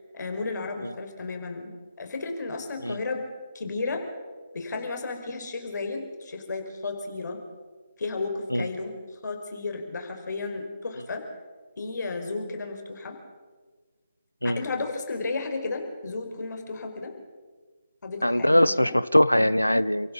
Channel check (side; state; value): both; inverted; correlation -0.93